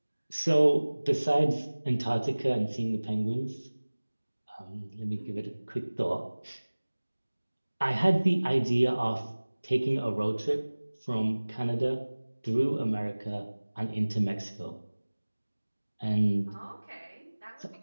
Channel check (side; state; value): both; inverted; correlation -1.00